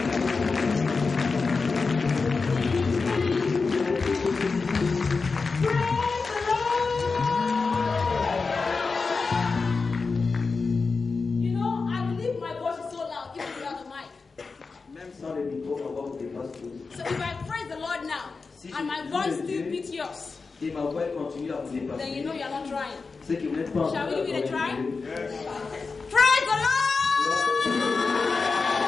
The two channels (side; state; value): right; quieter; 4.4 dB